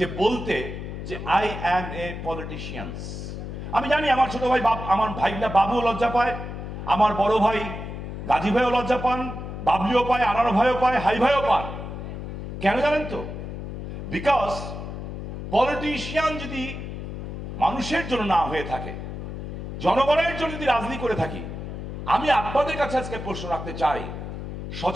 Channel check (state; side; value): noise; left; hum, 7 dB below the sound